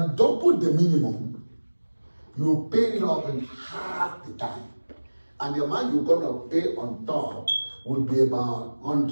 double the minimum, you pay it off in half the time. And the amount you're going to pay on top will be about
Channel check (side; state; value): both; inverted; correlation -1.00